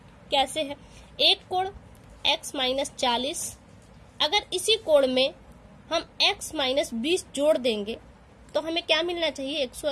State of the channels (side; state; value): both; identical; correlation 1.00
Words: कैसे है? एक कोण x-40, अगर इसी कोण में हम x-20 जोड़ देंगे तो हमें क्या मिलना चाहिए?